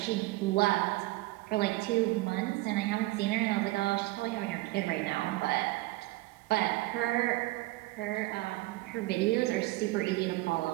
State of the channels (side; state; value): left; quieter; 19.6 dB